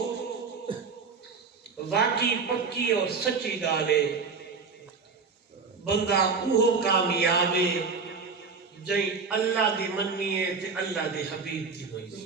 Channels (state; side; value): quieter; left; 4.9 dB